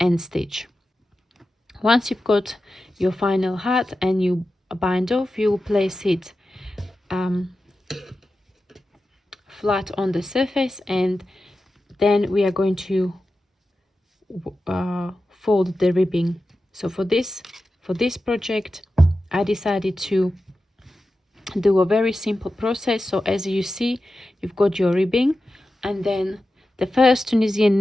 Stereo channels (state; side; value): normal; both; correlation 0.92